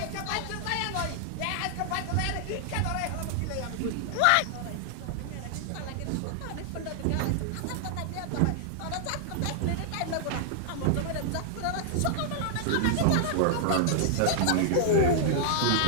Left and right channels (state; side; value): different; both; correlation -0.01